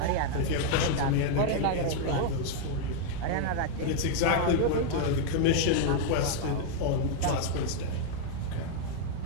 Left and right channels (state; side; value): different; both; correlation 0.00